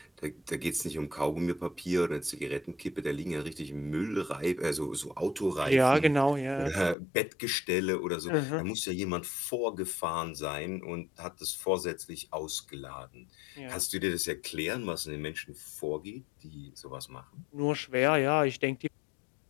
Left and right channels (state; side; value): drops out; right; at 7.0 s